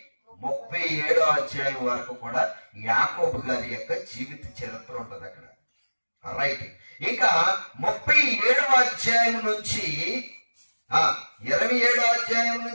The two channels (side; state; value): both; inverted; correlation -1.00